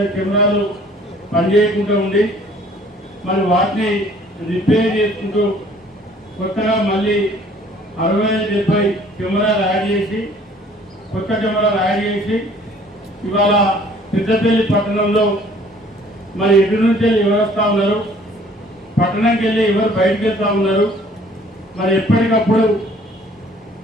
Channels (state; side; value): normal; both; correlation 0.56